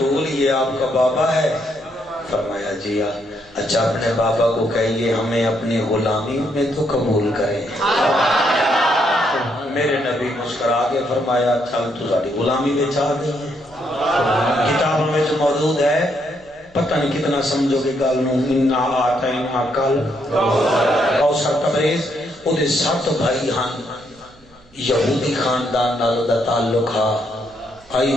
یہ آپ کا بابا ہے؟ فرمایا جی اچھا اپنے بابا کو کہیے ہمیں اپنی غلامی میں تو قبول کریں۔ میرے نبی مسکرا کے فرمایا چل تو ساری غلامی میں چاہ گئی ہے۔ کتابوں میں جو موجود ہے پتہ نہیں کتنا سمجھو گے گل نو، انا آتینا کل کوثر تبریز او دے 7 بھائی ہن، یہودی خاندان نال دا تعلق ہے، آئی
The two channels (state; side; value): noise; right; hum, 29 dB below the sound